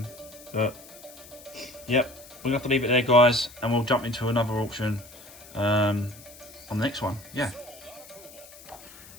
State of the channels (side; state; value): left; noise; hiss, 19 dB below the sound